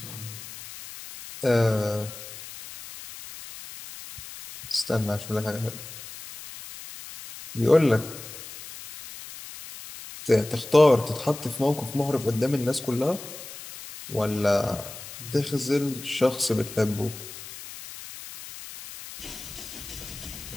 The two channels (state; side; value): noise; left; hiss, 13 dB below the sound